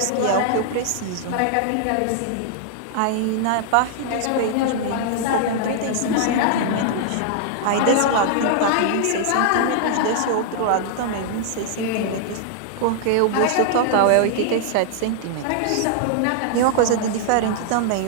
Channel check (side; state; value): both; different; correlation -0.01